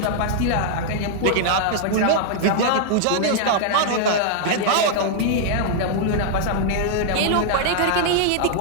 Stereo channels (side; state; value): both; different; correlation -0.01